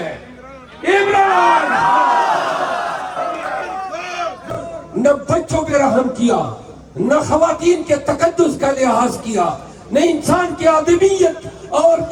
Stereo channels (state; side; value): identical; both; correlation 1.00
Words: عمران خان۔ نہ بچوں پہ رحم کیا، نہ خواتین کے تقدس کا لحاظ کیا، نہ انسان کی آدمیت اور